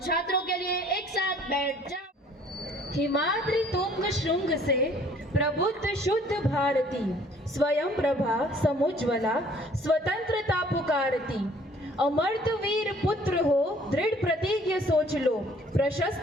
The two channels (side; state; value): both; normal; correlation 0.56